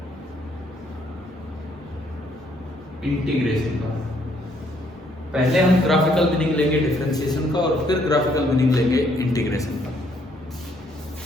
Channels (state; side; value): normal; both; correlation 0.68